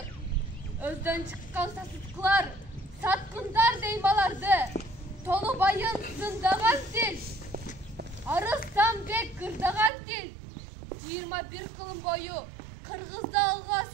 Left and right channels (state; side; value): drops out; left; at 9.9 s